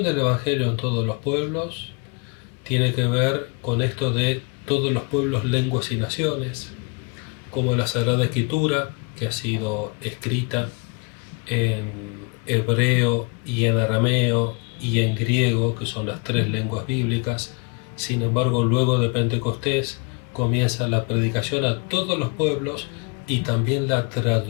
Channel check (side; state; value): right; quieter; 31.4 dB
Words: del Evangelio en todos los pueblos. Tiene que ver con esto de todos los pueblos, lenguas y naciones, como la Sagrada Escritura, que ha sido escrita en hebreo y en arameo y en griego, que son las tres lenguas bíblicas. Sin embargo, luego de Pentecostés comienza la predicación a todos los pueblos y también la